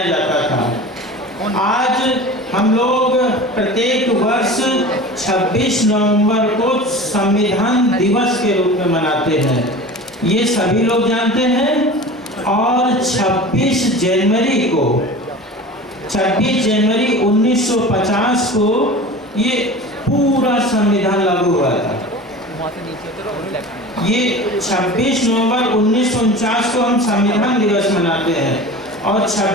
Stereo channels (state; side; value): normal; both; correlation 0.36